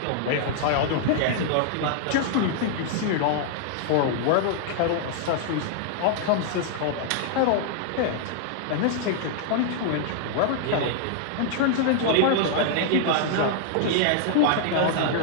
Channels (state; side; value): different; both; correlation -0.01